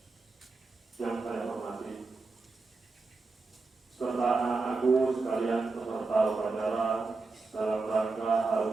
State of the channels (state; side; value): quieter; left; 3.8 dB